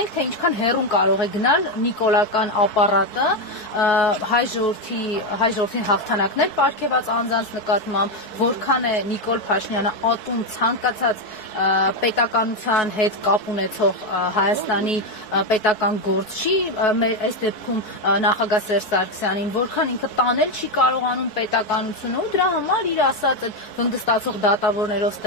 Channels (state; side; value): late; right; 4.6 ms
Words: ենք, թե ինչքան հեռուն կարող է գնալ նիկոլական ապարատը հայ ժողովրդին հաղթանակներ պարգևած անձանց նկատմամբ, որքան է Նիկոլ Փաշինյանը ատում ցանկացած պետականության հետ կապ ունեցող Հայաստանի պետական գործչի, այս դեպքում նախագահ Սերժ Սարգսյանին, որքան ինքը տանել չի կարողանում պետականությունը ու դրա համար իր ասած վնգստացող դատավորներով